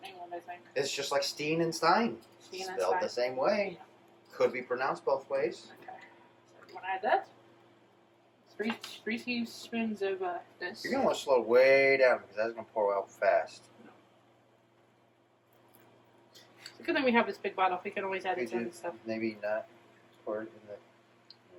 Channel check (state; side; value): identical; both; correlation 1.00